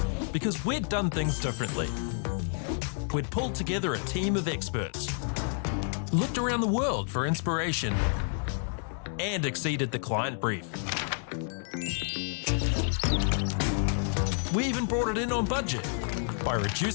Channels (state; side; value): silent; right; 58 dB below the other